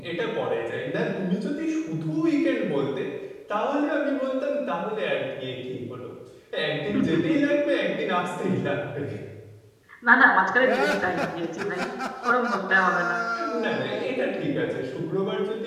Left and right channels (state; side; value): identical; both; correlation 1.00